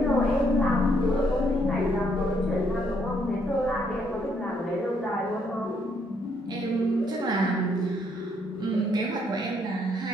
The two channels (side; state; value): both; normal; correlation 0.71